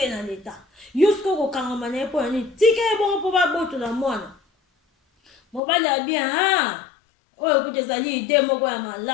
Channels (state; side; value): drops out; right; at 5.6 s